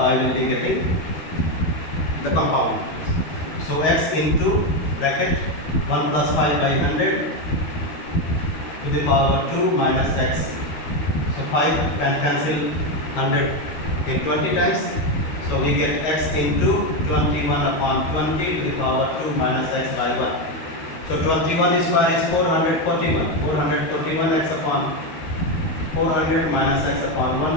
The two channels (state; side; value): late; right; 13 ms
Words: will be getting the compound. So x into bracket 1 plus 5 by 100 to the power 2 minus x. So 5 can cancel 100 in 20 times. So we get x into 21 upon 20 to the power 2 minus x by 1. So 21 square is 441. 441 x upon 400 minus x upon